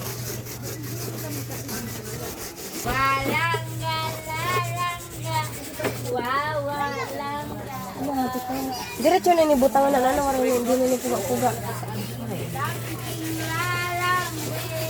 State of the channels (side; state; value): both; identical; correlation 1.00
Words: Diretso na ni butangan na ano karon hindi na ni puga-puga.